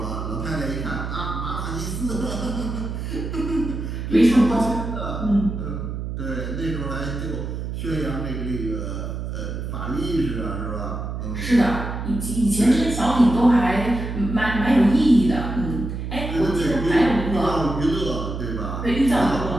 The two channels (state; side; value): noise; right; hum, 5 dB below the sound